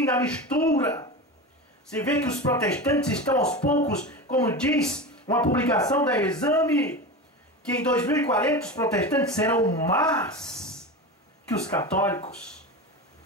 a mistura. Você vê que os protestantes estão aos poucos, como diz uma publicação da Exame, que em 2040 os protestantes serão mais que os católicos.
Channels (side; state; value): both; normal; correlation 0.25